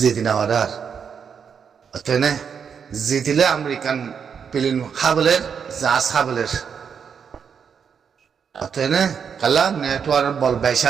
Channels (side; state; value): left; quieter; 6.9 dB